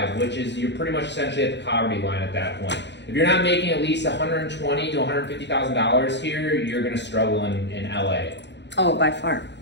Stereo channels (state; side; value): late; right; 0.51 ms